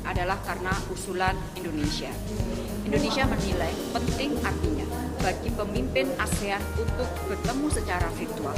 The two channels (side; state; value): both; identical; correlation 1.00